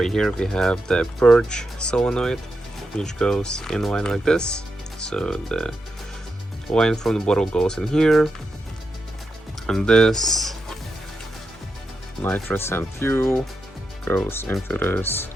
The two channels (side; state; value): both; normal; correlation 0.86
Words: here we have the purge solenoid which goes in line like this. So the line from the bottle goes in here, and this nitrous and fuel goes into this